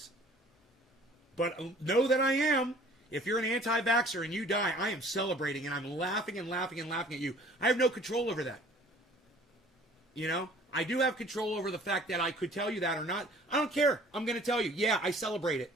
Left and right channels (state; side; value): normal; both; correlation 0.51